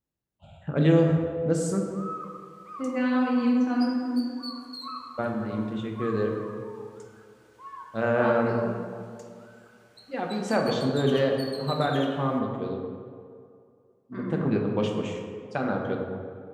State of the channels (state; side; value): identical; both; correlation 1.00